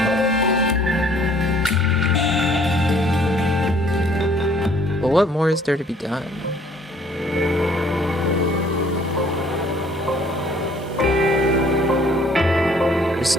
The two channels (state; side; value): normal; both; correlation 0.59